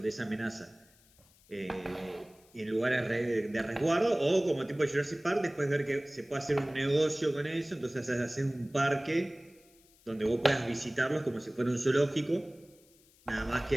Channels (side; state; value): left; noise; hiss, 29 dB below the sound